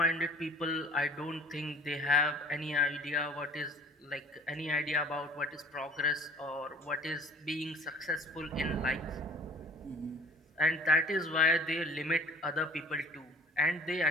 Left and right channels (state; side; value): normal; both; correlation 0.49